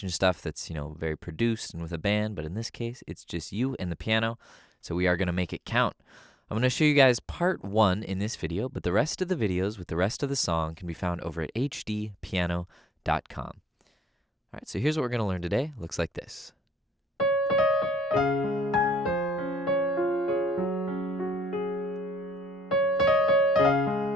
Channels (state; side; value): normal; both; correlation 0.75